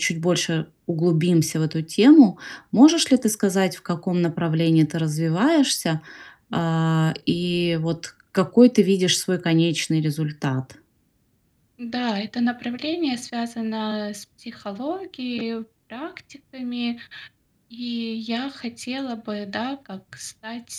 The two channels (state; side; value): identical; both; correlation 1.00